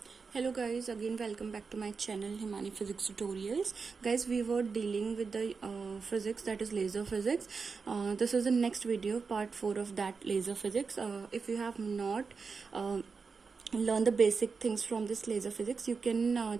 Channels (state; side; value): quieter; left; 5.0 dB